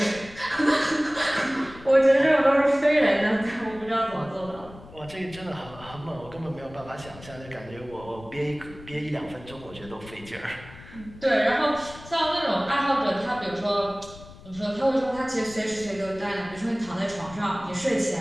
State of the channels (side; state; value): left; noise; rumble, 18 dB below the sound